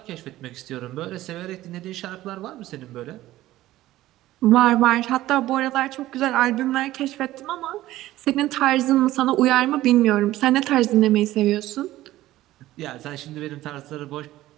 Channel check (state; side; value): quieter; left; 15.5 dB